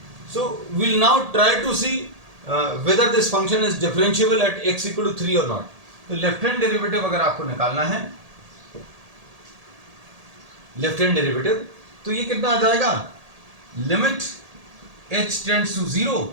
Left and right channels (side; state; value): left; late; 1.8 ms